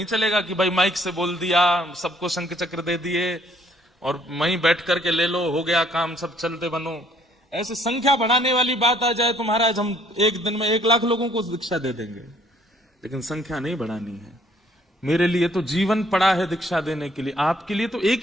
चलेगा कि भाई माइक से बोल दिया, सबको शंख चक्र दे दिए और वहीं बैठ करके ले लो, हो गया काम, सब चलते बनो। ऐसे संख्या बढ़ाने वाली बात आ जाए तो महाराज हम एक दिन में 1 लाख लोगों को दीक्षा दे देंगे, लेकिन संख्या नहीं बढ़ानी है। मेरे लिए तो जीवन पड़ा है दीक्षा देने के लिए, आपके लिए तो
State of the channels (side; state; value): both; normal; correlation 0.64